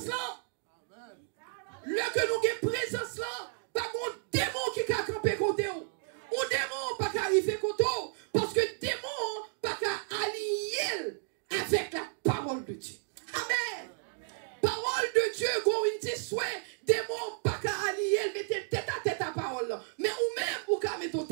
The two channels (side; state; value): left; silent; digital silence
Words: là. Le que nous avons présence là, pas mon démon qui a campé côté ou. Ou démon pas qu'à arriver côté ou. Parce que démon pas qu'à allier avec la parole de Dieu. Amen. Parole de Dieu, go une souhait, démon pas qu'à allier, mettez tête à tête à parole là. Mais ou même ou qu'à mettre